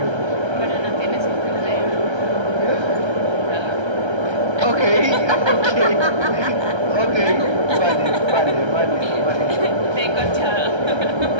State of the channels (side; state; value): left; late; 1.3 ms